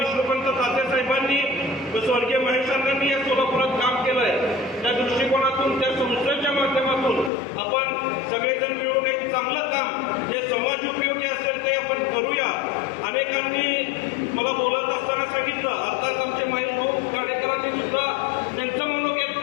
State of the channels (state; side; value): drops out; right; at 7.3 s